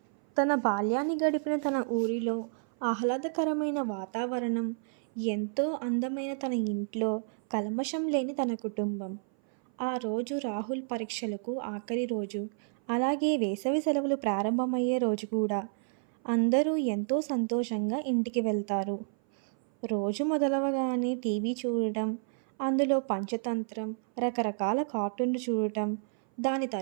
తన బాల్యాన్ని గడిపిన తన ఊరిలో ఆహ్లాదకరమైన వాతావరణం, ఎంతో అందమైన తన ఇంట్లో, కల్మషం లేని తన కుటుంబం. ఆ రోజు రాహుల్ పరీక్షలకు ఆఖరి రోజు. అలాగే వేసవి సెలవులు ప్రారంభమయ్యే రోజు కూడా. అందరూ ఎంతో సంతోషంగా ఇంటికి వెళ్తారు. రోజు మొదలవగానే టీవీ చూడటం, అందులో పంచతంత్రం, రకరకాల కార్టూన్లు చూడటం, దాని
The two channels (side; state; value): left; silent; 56 dB below the other